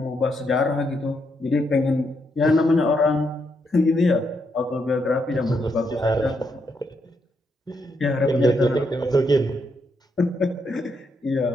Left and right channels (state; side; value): normal; both; correlation 0.78